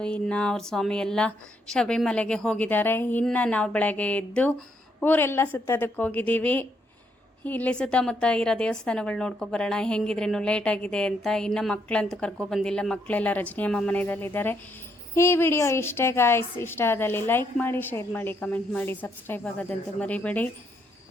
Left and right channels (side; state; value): both; normal; correlation 0.75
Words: ಇನ್ನು ಅವ್ರ ಸ್ವಾಮಿ ಎಲ್ಲ ಶಬರಿಮಲೆಗೆ ಹೋಗಿದ್ದಾರೆ. ಇನ್ನು ನಾವು ಬೆಳಗ್ಗೆ ಎದ್ದು ಊರೆಲ್ಲ ಸುತ್ತೋದಕ್ಕೆ ಹೋಗಿದ್ದೀವಿ. ಇಲ್ಲಿ ಸುತ್ತಮುತ್ತ ಇರೋ ದೇವಸ್ಥಾನಗಳು ನೋಡ್ಕೊಬರೋಣ, ಹೆಂಗಿದ್ರೇನು ಲೇಟ್ ಆಗಿದೆ ಅಂತ. ಇನ್ನು ಮಕ್ಕಳಂತೂ ಕರ್ಕೊಬಂದಿಲ್ಲ, ಮಕ್ಕಳೆಲ್ಲ ರಜನಿಯಮ್ಮ ಮನೆಯಲ್ಲಿದ್ದಾರೆ. ಈ ವಿಡಿಯೋ ಇಷ್ಟೇ ಗಾಯ್ಸ್. ಇಷ್ಟ ಆದಲ್ಲಿ ಲೈಕ್ ಮಾಡಿ, ಶೇರ್ ಮಾಡಿ, ಕಮೆಂಟ್ ಮಾಡಿ, ಸಬ್ಸ್ಕ್ರೈಬ್ ಆಗೋದಂತೂ ಮರಿಬೇಡಿ.